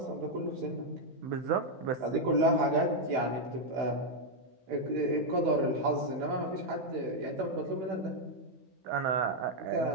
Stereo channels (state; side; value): late; left; 15 ms